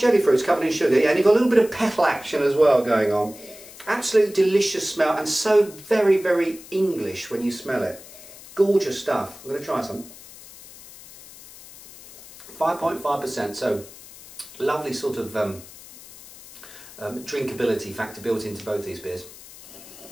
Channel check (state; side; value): noise; left; hiss, 18 dB below the sound